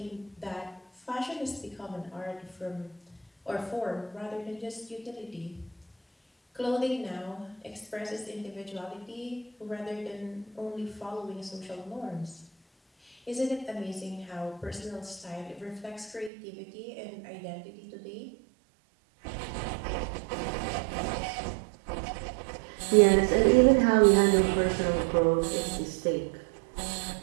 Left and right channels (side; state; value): left; drops out; at 16.3 s